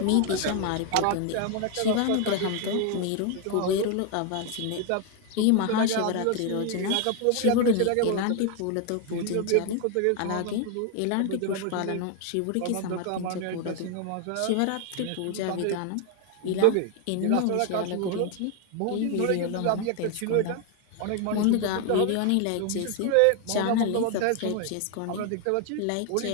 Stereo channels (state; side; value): different; both; correlation 0.01